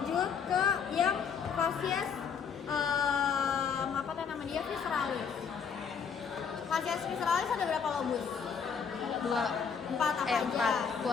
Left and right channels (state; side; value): quieter; right; 6.6 dB